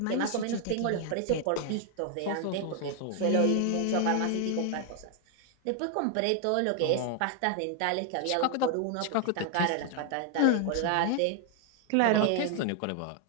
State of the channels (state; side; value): different; both; correlation 0.00